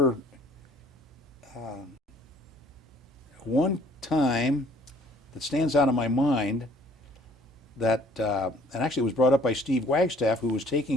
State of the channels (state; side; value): normal; both; correlation 0.57